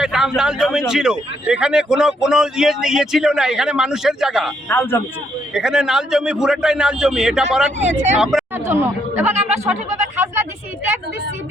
নাল জমিন ছিল। এখানে কোনো ইয়ে ছিল না। এখানে মানুষের জায়গা, এখানে নাল জমি, পুরোটাই নাল জমি। এটা বরাদ আমরা জন্য, এবং আমরা সঠিকভাবে খাজনা দিছি, ট্যাক্স দিছি,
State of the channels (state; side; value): normal; both; correlation 0.73